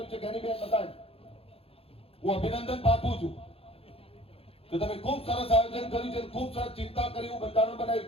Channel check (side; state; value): right; late; 0.28 ms